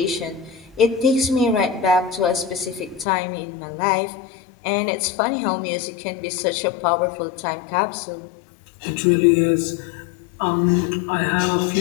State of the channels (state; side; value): drops out; right; at 3.1 s